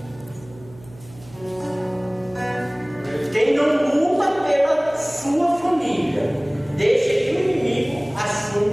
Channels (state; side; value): noise; right; hum, 22 dB below the sound